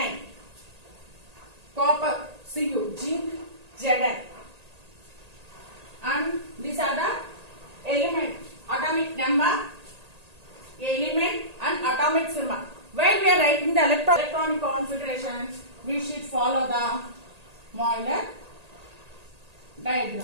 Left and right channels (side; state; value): left; late; 1.8 ms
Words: Copper Cu. Zinc Zn. And these are the element, atomic number, element and atomic symbol. When we are writing the electronic configuration, we should follow the Euler diagram.